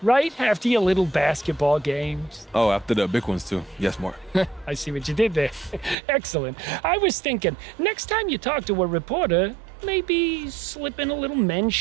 right? After your little basketball games. Oh, after the big ones, too. Yes, more. I see what you did there. Excellent. I was thinking, next time you talk to a reporter, maybe slip in a little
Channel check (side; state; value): left; drops out; at 6.0 s